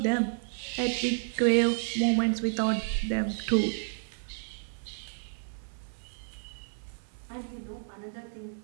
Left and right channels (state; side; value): silent; left; 57 dB below the other